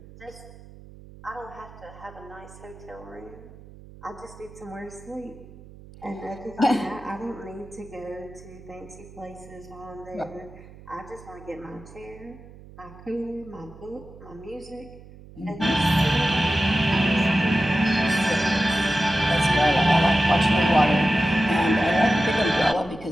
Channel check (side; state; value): right; noise; hum, 19 dB below the sound